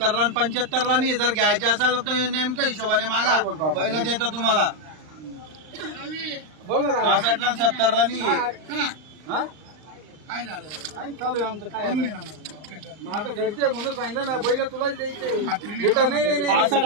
75ला नाही। जर घ्यायचे असेल तर तुम्ही नेमक्या हिशोबाने मागा, पहिलं देतो तुम्हाला। बोल ना दादा. 65ला 70ला नाही। हा? काय चालू आहे आमचं? काय माझं घरचे म्हणून सांगितलं ना, बैल तुलाच द्यायचे बेटा. नाही नाही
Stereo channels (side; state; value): left; late; 39 ms